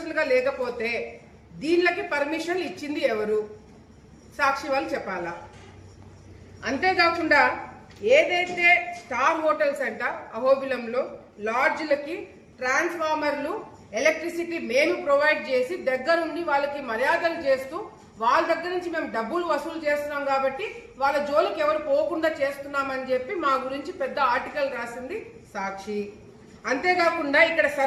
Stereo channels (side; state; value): both; identical; correlation 1.00